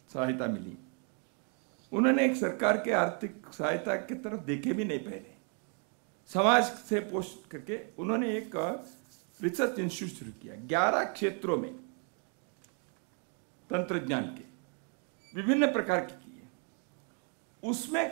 सहायता मिली। उन्होंने एक सरकार के आर्थिक सहायता की तरफ देखे भी नहीं पहले। समाज से पोस्ट करके उन्होंने एक रिसर्च इंस्टीट्यूट शुरू किया 11 क्षेत्रों में, तंत्रज्ञान के विभिन्न प्रकार के किए। उसमें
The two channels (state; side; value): quieter; left; 40.0 dB